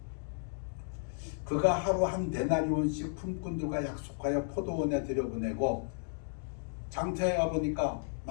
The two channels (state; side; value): silent; right; digital silence